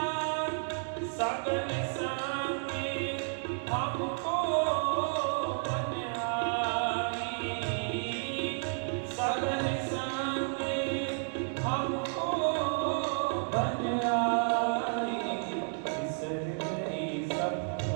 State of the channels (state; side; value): silent; left; 57 dB below the other